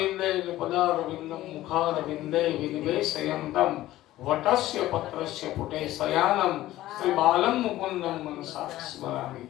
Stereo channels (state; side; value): quieter; right; 15.3 dB